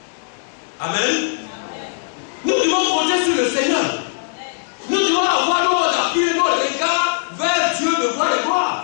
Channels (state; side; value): silent; right; digital silence